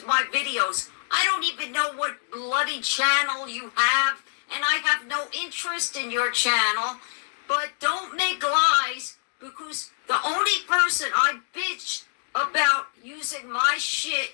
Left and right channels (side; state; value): right; silent; 56 dB below the other